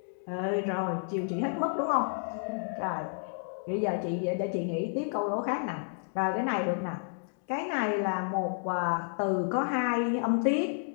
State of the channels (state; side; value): silent; right; digital silence